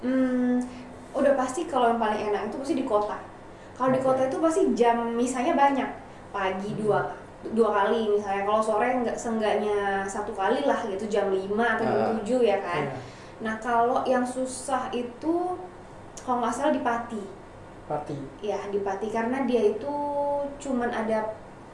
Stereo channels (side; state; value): both; identical; correlation 1.00